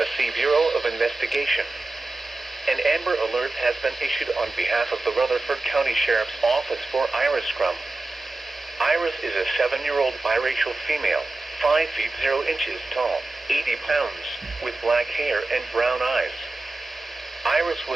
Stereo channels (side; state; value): left; quieter; 3.1 dB